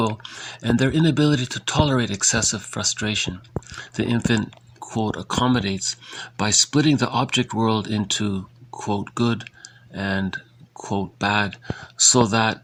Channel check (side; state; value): both; identical; correlation 1.00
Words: and their inability to tolerate excessive frustration. The infant, quote, accommodates by splitting the object world into, quote, good and, quote, bad, so that